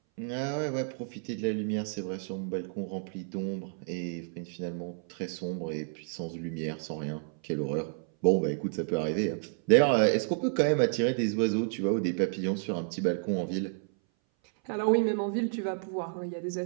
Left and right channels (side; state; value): left; silent; 57 dB below the other